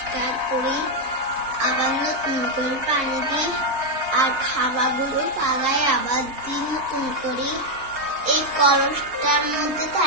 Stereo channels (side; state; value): left; late; 4.0 ms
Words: করি, আবার নতুন করে পানি দিই, আর খাবারগুলো পালাই আবার দিই নতুন করি। এই কলসটার মধ্যে